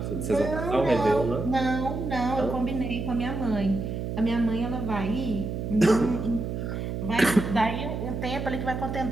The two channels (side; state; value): right; noise; hum, 4 dB below the sound